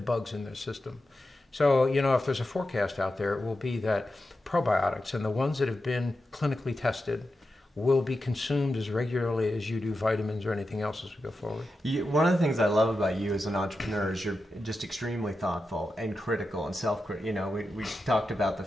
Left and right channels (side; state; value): both; normal; correlation 0.90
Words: bugs in their system. So, if there's a forecast out there, it will be that probiotics and the ones that have been clinically tested will be consumed as regularly as you do vitamins or anything else as we go forward. One of the things I love about you as an entrepreneur is you're just extremely thoughtful and critical and self-critical. We talked about the